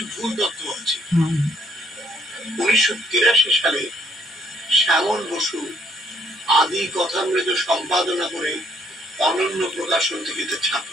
1983 সালে শ্যামল বসু আদি কথামৃত সম্পাদনা করে অনন্য প্রকাশন থেকে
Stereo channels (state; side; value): normal; both; correlation 0.66